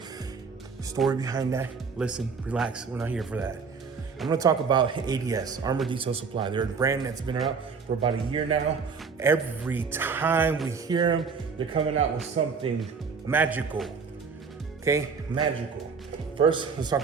Story behind that? Listen, relax, we're not here for that. I'm gonna talk about ADS, Armour Detail Supply. They're a brand that's been around for about a year now. Every time we hear them, they're coming out with something magical, okay? Magical. First, let's talk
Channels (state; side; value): quieter; left; 5.4 dB